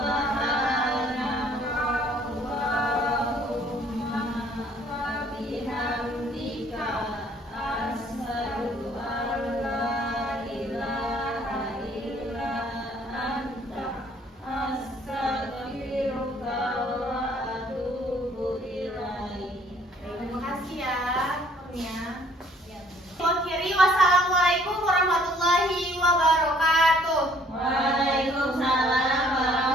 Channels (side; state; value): both; normal; correlation 0.60